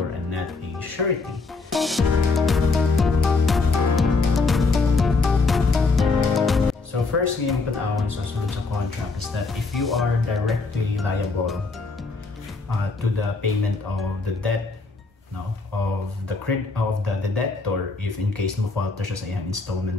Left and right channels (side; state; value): right; quieter; 3.9 dB